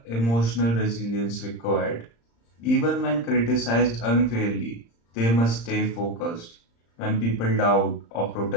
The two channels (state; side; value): late; right; 35 ms